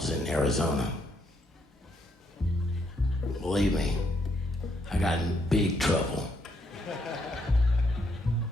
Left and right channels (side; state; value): both; normal; correlation 0.74